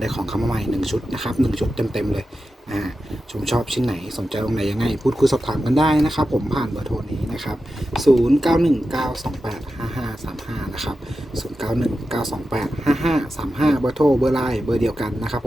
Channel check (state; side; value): normal; both; correlation 0.91